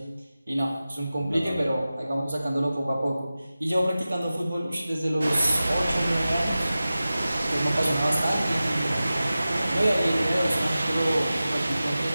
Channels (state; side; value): inverted; both; correlation -0.95